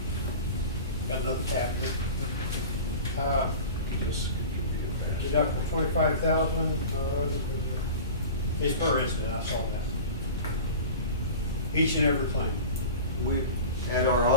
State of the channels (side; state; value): both; inverted; correlation -0.36